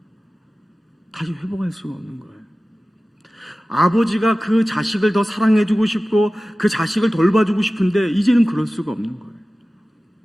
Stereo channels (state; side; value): normal; both; correlation 0.96